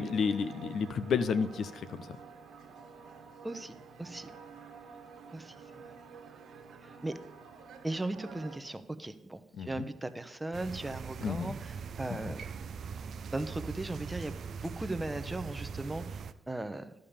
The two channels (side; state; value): both; normal; correlation 0.82